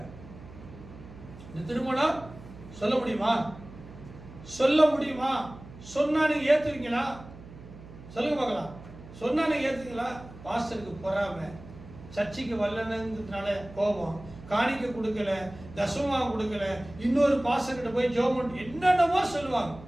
இந்த திருமணம் சொல்ல முடியுமா? சொன்னா நீங்க ஏத்துவீங்களா? சொல்லுங்க பார்க்கலாம். சொன்னா நீங்க ஏத்துவீங்களா? பாஸ்டருக்கு பொறாமை, சர்ச்சைக்கு வரலன்றதுனால கோபம், காணிக்க கொடுக்கல, தசமா கொடுக்கல, இன்னொரு பாஸ்டர் கிட்ட போய் ஜெபம் என்னென்னமோ சொல்லுவாங்க.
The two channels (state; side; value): noise; right; hum, 17 dB below the sound